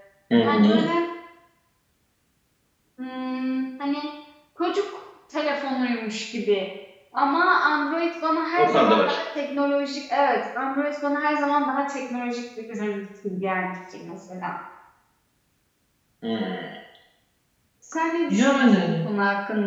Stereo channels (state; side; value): identical; both; correlation 1.00